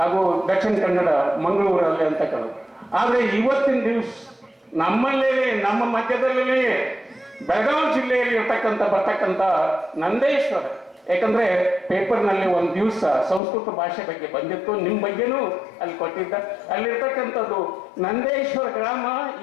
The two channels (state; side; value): drops out; right; at 13.4 s